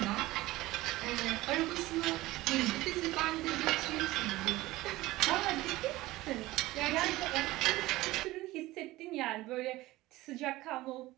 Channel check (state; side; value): quieter; left; 18.2 dB